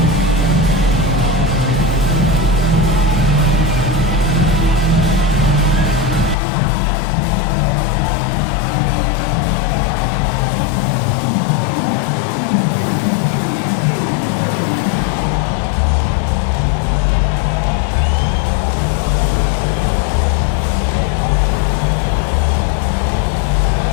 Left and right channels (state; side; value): drops out; right; at 6.4 s